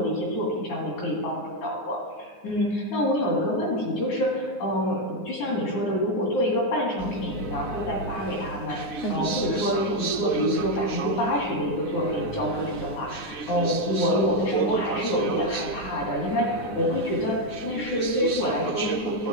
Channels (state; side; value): late; right; 9.7 ms